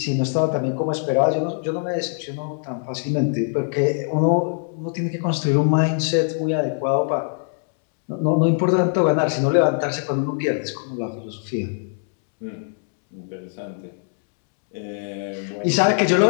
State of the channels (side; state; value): right; silent; 64 dB below the other